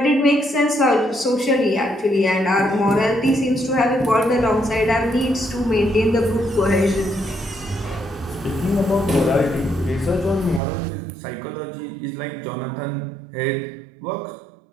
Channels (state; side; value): drops out; left; at 10.6 s